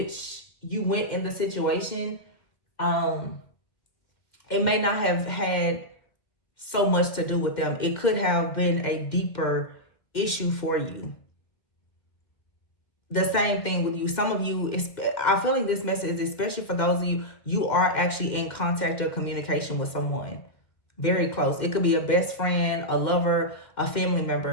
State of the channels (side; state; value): right; late; 2.0 ms